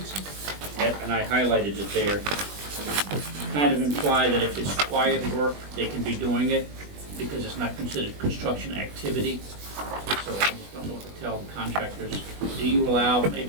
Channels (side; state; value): left; late; 20 ms